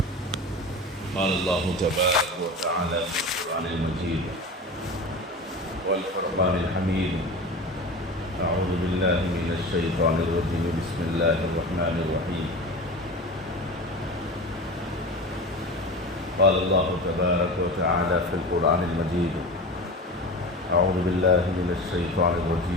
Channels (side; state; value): both; normal; correlation 0.31